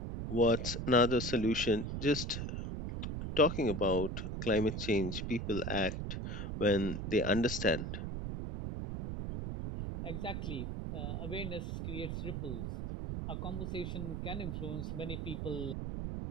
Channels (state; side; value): noise; right; rumble, 4 dB below the sound